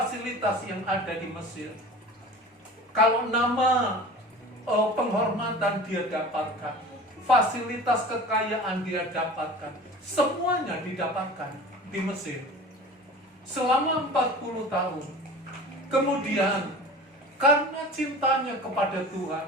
yang ada di Mesir. Kalau nama penghormatan dia dapatkan, fasilitas kekayaan dia dapatkan, semuanya didapatkan di Mesir selama 40 tahun. Kemudian karena cintanya kepada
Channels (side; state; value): both; normal; correlation 0.38